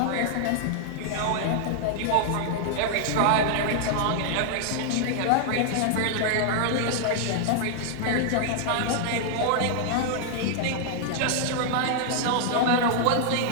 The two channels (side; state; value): both; different; correlation -0.01